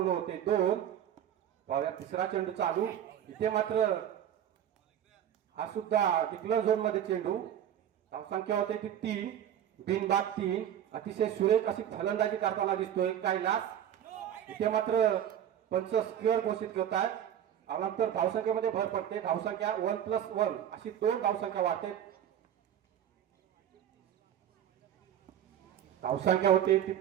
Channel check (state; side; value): quieter; left; 10.2 dB